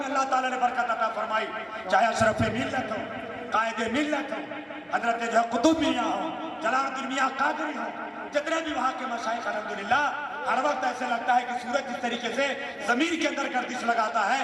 اللہ تعالیٰ نے برکت عطا فرمائی. چاہے اشرف ملت ہو، قائد ملت ہو، حضرت جو قطب میاں ہو، جلال الدین میاں قادری ہو، جتنے بھی وہاں کے مشائخ الحمدللہ، ہر وقت ایسے لگتا ہے کہ سورج جس طریقے سے زمین کے اندر گردش لگاتا ہے،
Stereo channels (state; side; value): identical; both; correlation 1.00